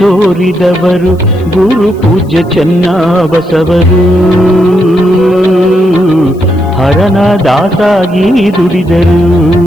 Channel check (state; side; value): noise; left; hiss, 30 dB below the sound